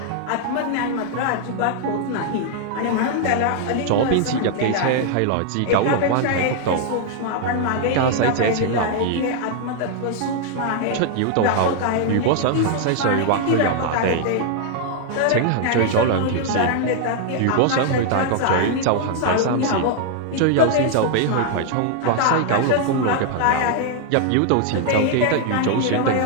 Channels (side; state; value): both; different; correlation 0.00